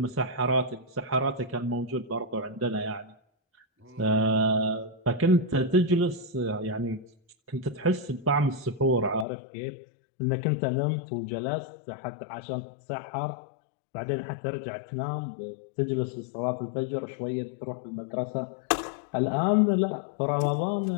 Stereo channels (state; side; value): drops out; right; at 9.2 s